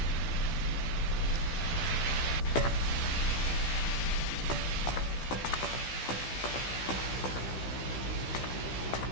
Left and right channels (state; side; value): late; right; 16 ms